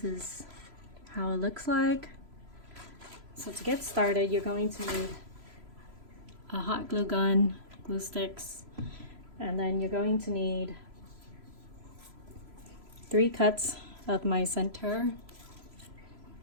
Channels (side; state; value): left; late; 3.0 ms